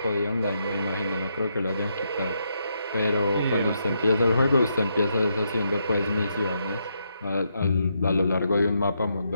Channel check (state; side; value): inverted; both; correlation -0.79